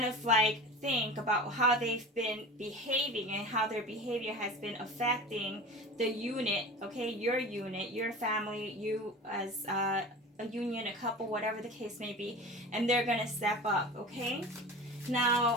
of like think about how they've been behaving and how their behavior has been affecting the unit, okay? Your family, you as a union, a couple, whatever the case may be, and they're going to step up, okay? Now,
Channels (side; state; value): both; normal; correlation 0.34